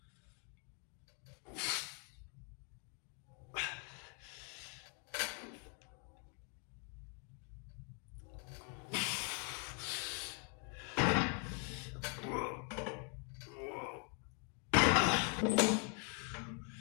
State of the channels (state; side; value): quieter; right; 38.9 dB